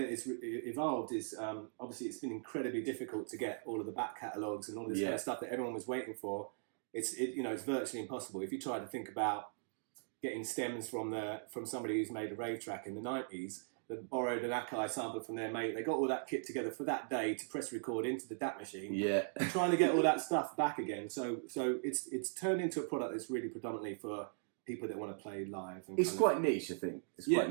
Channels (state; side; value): silent; left; digital silence